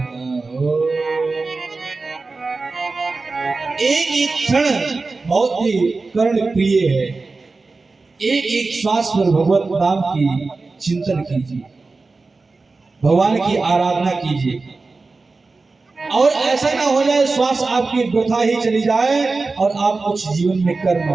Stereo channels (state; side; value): quieter; left; 3.8 dB